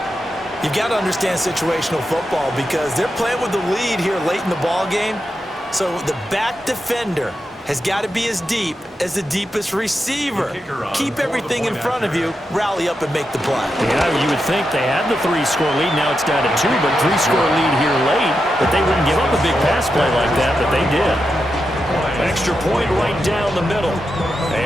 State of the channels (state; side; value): normal; both; correlation 0.87